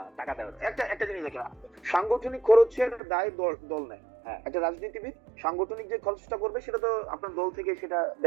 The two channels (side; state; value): left; drops out; at 3.0 s